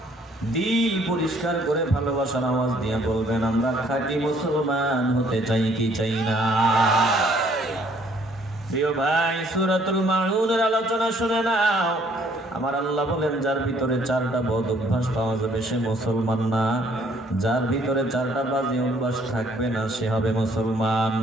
দিল পরিষ্কার করে ভালোবাসার আওয়াজ দিয়ে বলবেন, আমরা খাঁটি মুসলমান হতে চাই কি চাই না? প্রিয় ভাই, সূরাতুল মাউনের আলোচনা শুনে নাও। আমার আল্লাহ বলেন, যার ভিতরে 4টা বদ অভ্যাস পাওয়া যাবে সে মুসলমান না, যার ভিতরে 4টা বাজে অভ্যাস থাকবে না সে হবে মুসলমান।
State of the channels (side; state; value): both; normal; correlation 0.62